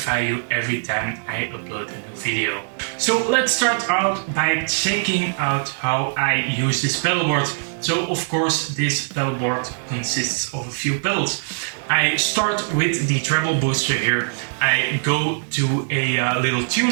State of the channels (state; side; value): silent; left; digital silence